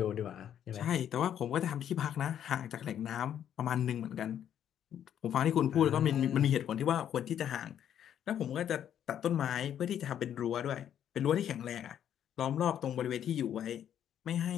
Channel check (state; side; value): quieter; right; 9.9 dB